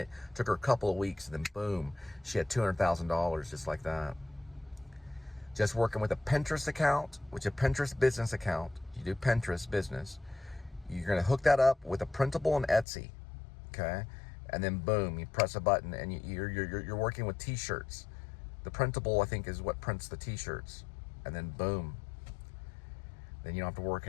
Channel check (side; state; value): right; drops out; at 12.9 s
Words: took her a couple of weeks, and then boom, she had $200,000 just like that. Just working with a Pinterest account, which is a Pinterest business account. You do Pinterest business. You're going to hook that up with a printable and Etsy, okay? And then boom, you press a button, and you're working with T-shirts. The printable, I think, is what prints the T-shirts. And then boom, then you don't have to work